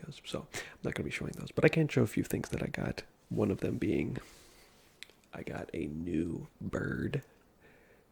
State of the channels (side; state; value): both; identical; correlation 1.00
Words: so I'm not going to be showing those. But I can show a few things that I got. One of them being, I got a new bird.